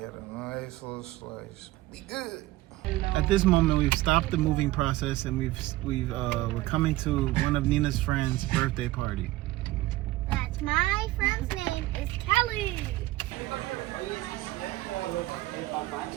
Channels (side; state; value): left; quieter; 17.4 dB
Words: a nice little slice. Be good. At this moment, we've stopped the moving process, and we're coming to one of Nina's friends' birthday party. That's my friend's name is Kelly.